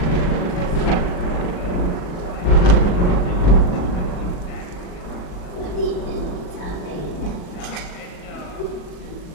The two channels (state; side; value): late; right; 39 ms